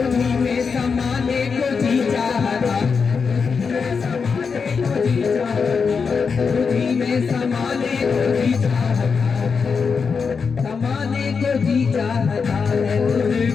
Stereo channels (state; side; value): quieter; right; 5.5 dB